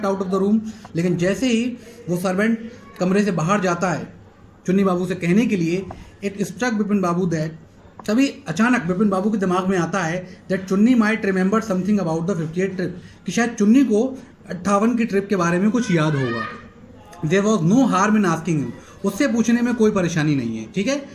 out of the room, लेकिन जैसे ही वो सर्वेंट कमरे से बाहर जाता है चुन्नी बाबू से कहने के लिए, it struck Bipin Babu that, तभी अचानक बिपिन बाबू के दिमाग में आता है दैट चुन्नी might remember something about the 58 trip, कि शायद चुन्नी को 58 की ट्रिप के बारे में कुछ याद होगा। There was no harm in asking him, उससे पूछने में कोई परेशानी नहीं है, ठीक है।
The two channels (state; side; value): identical; both; correlation 1.00